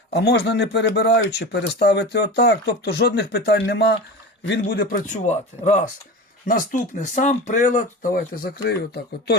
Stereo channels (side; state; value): both; normal; correlation 0.29